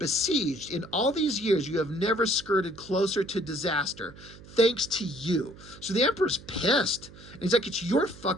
In all these years, you have never skirted closer to disaster. Thanks to you. So the Emperor's pissed. And he's like, it's your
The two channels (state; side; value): noise; right; hum, 19 dB below the sound